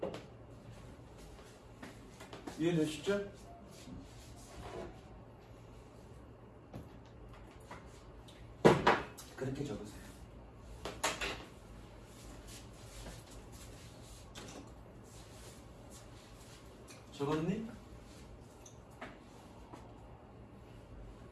이해되시죠? 그렇게 적으세요. 적었니?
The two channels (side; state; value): both; identical; correlation 1.00